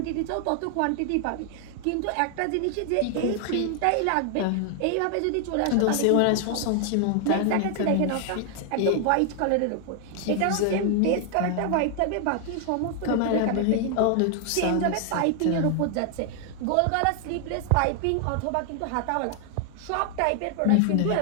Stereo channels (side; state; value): both; different; correlation 0.00